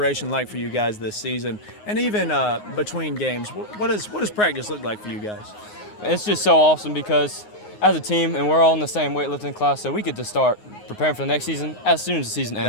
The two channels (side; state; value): right; late; 9.6 ms